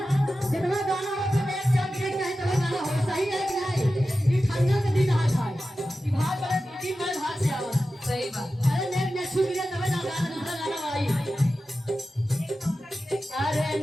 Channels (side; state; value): both; normal; correlation 0.93